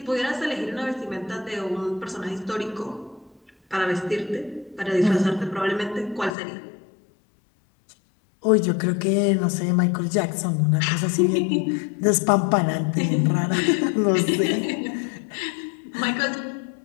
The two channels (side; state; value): right; drops out; at 6.4 s